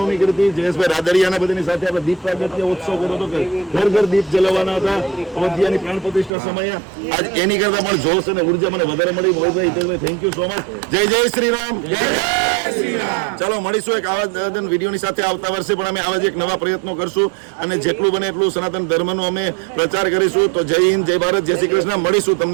કરી હતી. જયેશભાઈ રાદડિયાના બધાની સાથે આપણે દીપ પ્રાગટ્ય ઉત્સવ કર્યો હતો કે ઘર ઘર દીપ જલાવવાના હતા અયોધ્યાની પ્રાણ પ્રતિષ્ઠા સમયે. આજ એની કરતા પણ જોશ અને ઉર્જા મને વધારે મળી. મોહિતભાઈ, હિતેશભાઈ, થેન્ક યુ સો મચ. જય જય શ્રી રામ. ચાલો મળીશું એક આવા વિડીયોની સાથે આવતા વર્ષે પણ અમે આવા જ એક નવા પ્રયત્નો કરશું અને જેટલું બને એટલું સનાતન ધર્મનો અમે પ્રચાર કરીશું. તો જય હિન્દ, જય ભારત, જય શ્રી કૃષ્ણ. મળીશું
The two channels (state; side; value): drops out; left; at 6.3 s